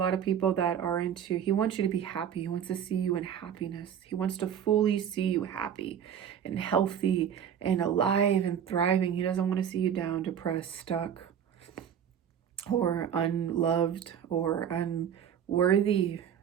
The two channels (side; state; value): left; quieter; 8.7 dB